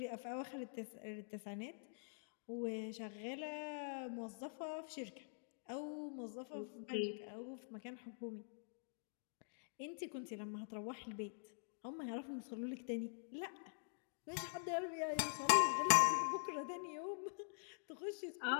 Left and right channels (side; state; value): right; silent; digital silence